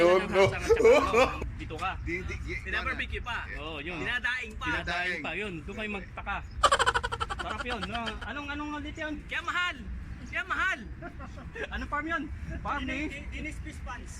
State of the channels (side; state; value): both; identical; correlation 1.00